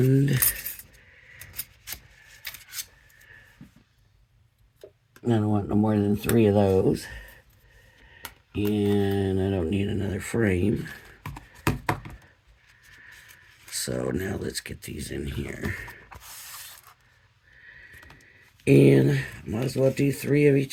I don't want no more than 3 of those. And I don't need another frame. So now let's get these in here. And might as well do 3 of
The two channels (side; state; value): both; identical; correlation 1.00